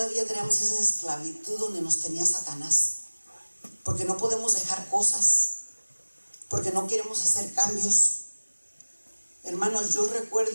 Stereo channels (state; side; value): inverted; both; correlation -1.00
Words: esclavitud donde nos tenía Satanás. Porque no podemos dejar cosas. Porque no queremos hacer cambios. Hermanos, yo